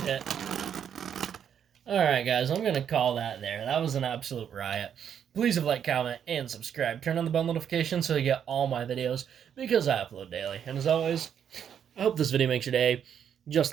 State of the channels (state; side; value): quieter; left; 8.6 dB